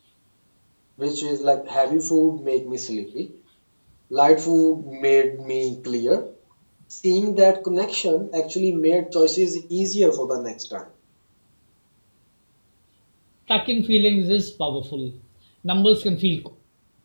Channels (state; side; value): inverted; both; correlation -1.00